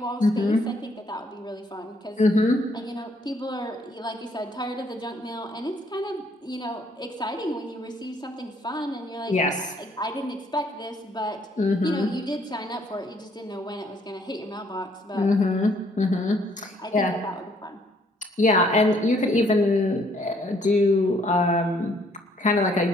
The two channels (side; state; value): both; normal; correlation 0.65